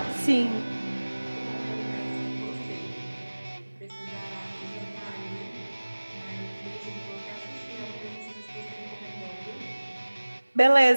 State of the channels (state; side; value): inverted; both; correlation -1.00